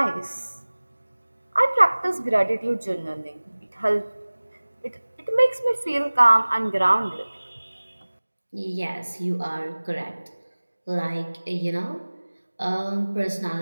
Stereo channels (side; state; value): both; inverted; correlation -1.00